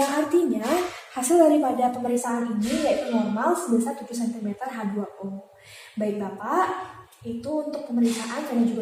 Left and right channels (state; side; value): identical; both; correlation 1.00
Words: yang artinya hasil daripada pemeriksaan ini yaitu normal sebesar 7 cm H2O. Baik Bapak, itu untuk pemeriksaan vena